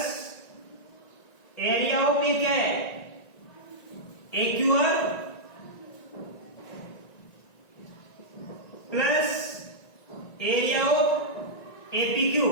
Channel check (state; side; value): late; right; 1.9 ms